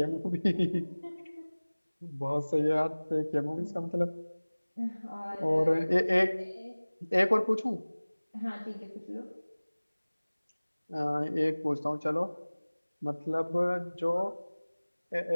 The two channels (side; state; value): both; inverted; correlation -1.00